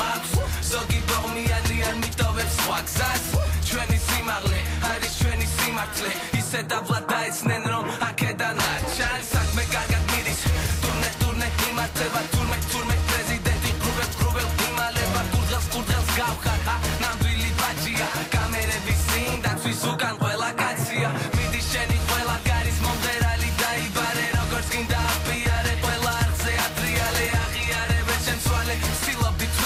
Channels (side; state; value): both; identical; correlation 1.00